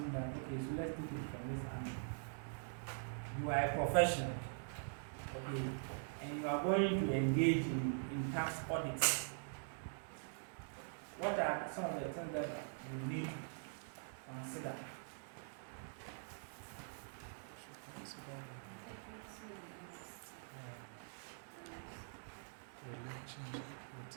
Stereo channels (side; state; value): left; silent; digital silence